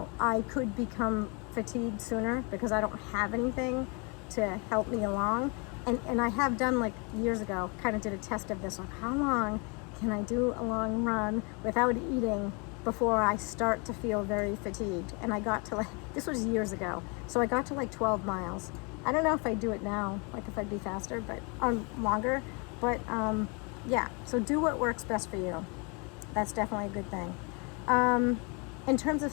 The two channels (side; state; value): right; quieter; 32.3 dB